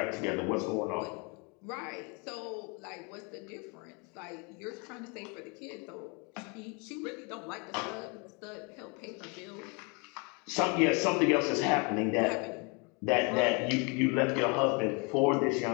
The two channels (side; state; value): right; quieter; 32.2 dB